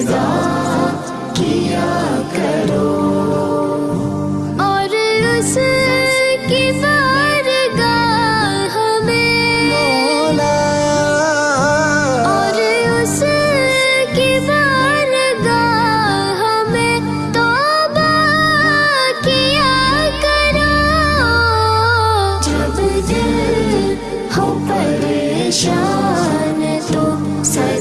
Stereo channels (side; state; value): both; identical; correlation 1.00